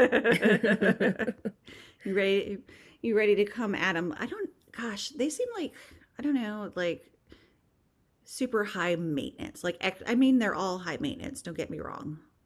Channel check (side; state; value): both; identical; correlation 1.00